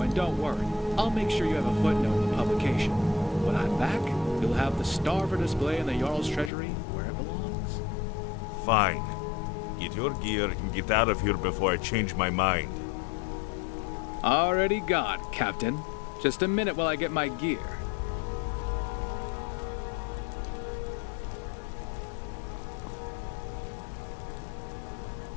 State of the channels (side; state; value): right; drops out; at 6.5 s